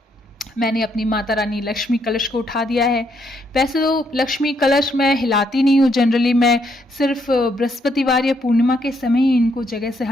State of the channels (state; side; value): normal; both; correlation 0.74